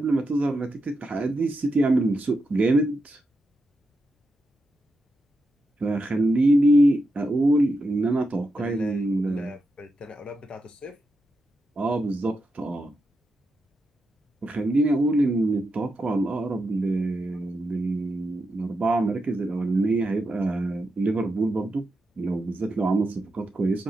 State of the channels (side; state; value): both; normal; correlation 0.87